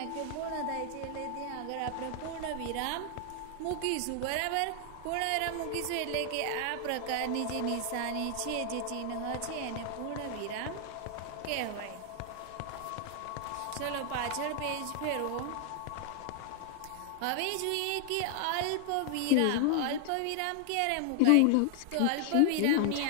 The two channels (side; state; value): both; different; correlation 0.00